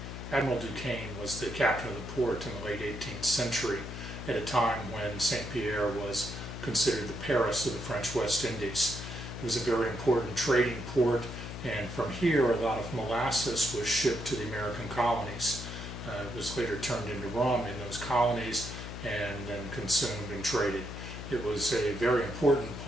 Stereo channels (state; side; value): noise; left; hum, 8 dB below the sound